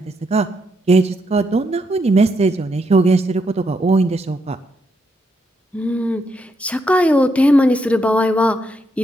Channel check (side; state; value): both; normal; correlation 0.78